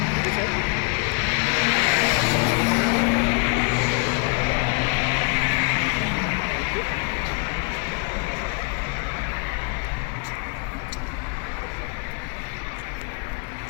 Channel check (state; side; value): quieter; right; 35.5 dB